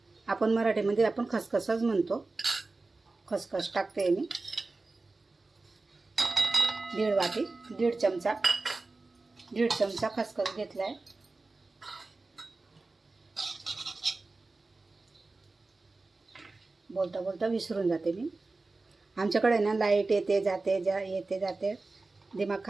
आपण मराठीमध्ये आपण खसखसच म्हणतो. खसखस टाकते मी 1.5 वाटी. 1.5 चमचा खसखस घेतलाय. बोलता बोलता विसरून जाते मी. आमच्याकडे ना लाईट येते जाते, येते जाते, दिमाग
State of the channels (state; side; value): quieter; left; 3.5 dB